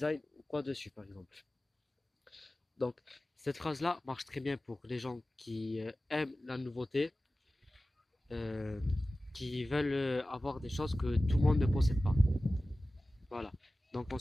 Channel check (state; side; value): normal; both; correlation 0.96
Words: ou quoi dessus, par exemple. Donc, cette phrase-là marche très bien pour les gens qui aiment la nouveauté, euh, qui veulent avoir des choses que tout le monde ne possède pas. Voilà. Donc